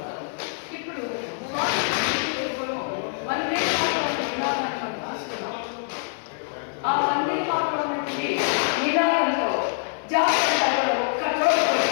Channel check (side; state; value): right; silent; digital silence